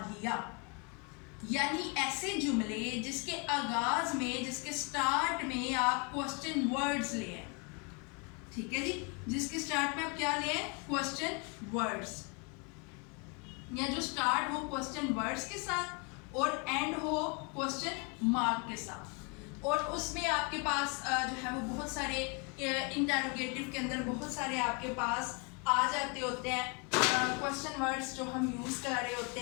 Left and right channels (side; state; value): right; quieter; 33.6 dB